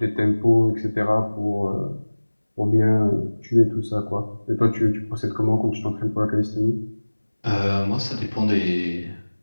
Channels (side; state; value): both; inverted; correlation -1.00